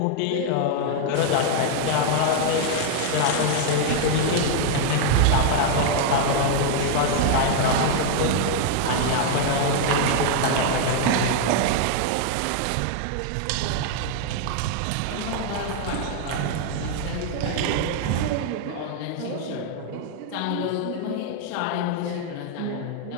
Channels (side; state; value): both; different; correlation 0.00